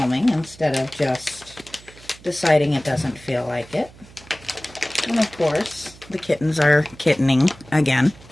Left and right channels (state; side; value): noise; right; hum, 22 dB below the sound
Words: instead of just deciding it doesn't feel like it. And of course, the kittens are kittening again.